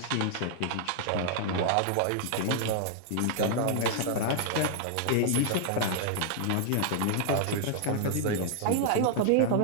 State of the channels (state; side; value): different; both; correlation -0.01